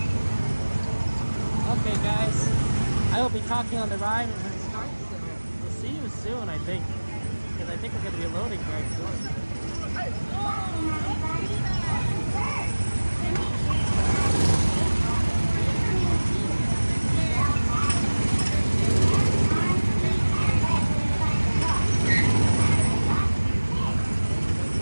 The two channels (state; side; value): inverted; both; correlation -1.00